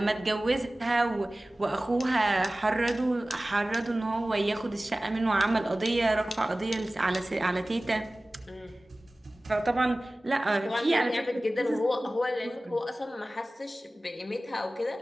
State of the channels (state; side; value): normal; both; correlation 0.97